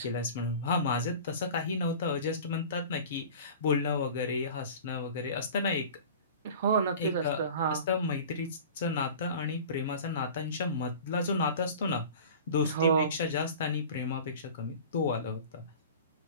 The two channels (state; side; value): inverted; both; correlation -0.39